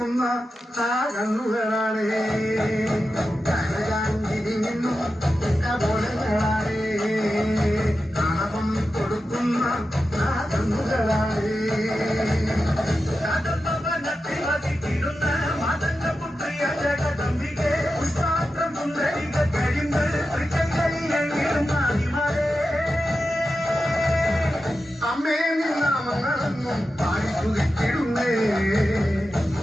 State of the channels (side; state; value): both; normal; correlation 0.91